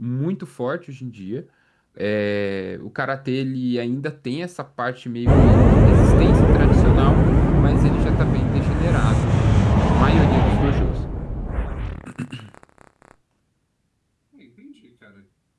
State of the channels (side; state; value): both; identical; correlation 1.00